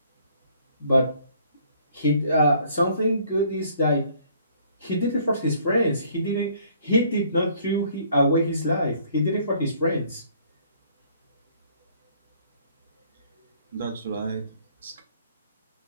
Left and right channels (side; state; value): both; inverted; correlation -0.60